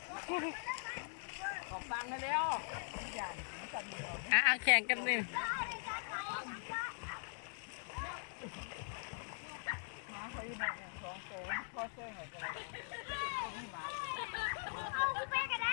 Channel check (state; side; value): silent; right; 50 dB below the other